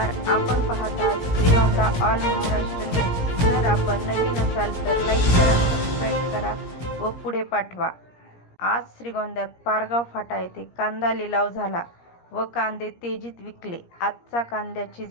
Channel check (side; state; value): right; late; 17 ms